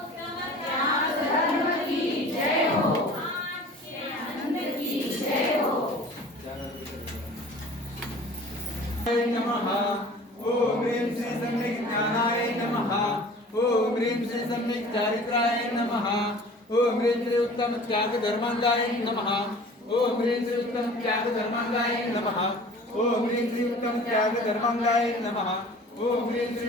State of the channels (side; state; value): both; normal; correlation 0.45